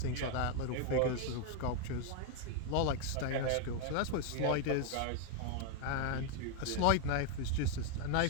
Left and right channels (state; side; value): different; both; correlation 0.01